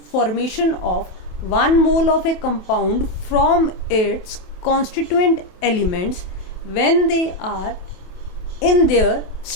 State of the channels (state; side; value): late; right; 28 ms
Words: of 1 mole of a compound from its constituent elements when they are in their